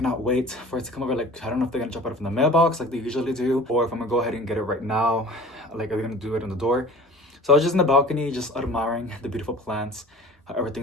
wait for it to come over. Like, I don't know if they're gonna drop it from the mailbox like they usually do, or if I'm gonna go ahead and get it right now. Like, are they gonna do it on the door? So I was just in the balcony, just admiring the beautiful plants, how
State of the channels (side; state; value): both; normal; correlation 0.42